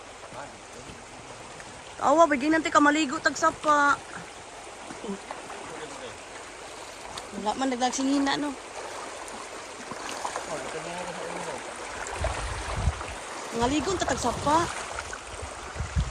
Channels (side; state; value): both; identical; correlation 1.00